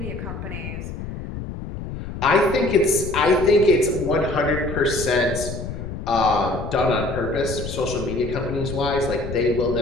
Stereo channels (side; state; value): left; noise; rumble, 8 dB below the sound